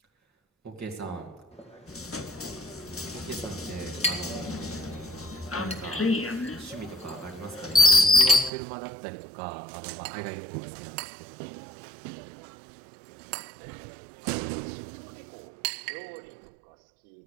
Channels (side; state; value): left; drops out; at 8.5 s